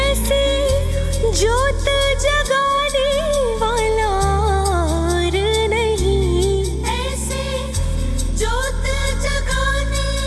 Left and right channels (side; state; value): both; identical; correlation 1.00